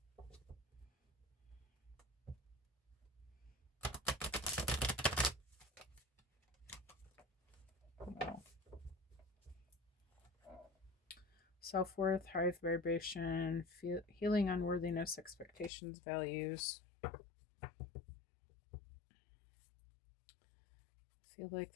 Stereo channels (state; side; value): drops out; right; at 15.7 s